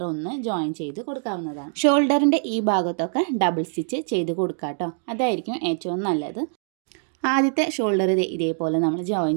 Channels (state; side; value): silent; left; 63 dB below the other